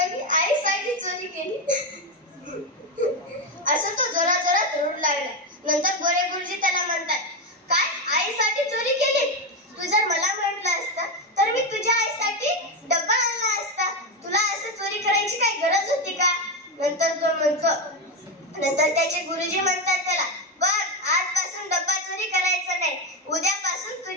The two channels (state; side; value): normal; both; correlation 0.12